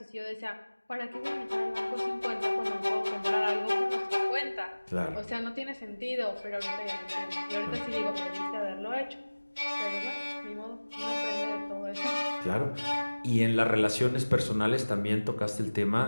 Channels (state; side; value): inverted; both; correlation -1.00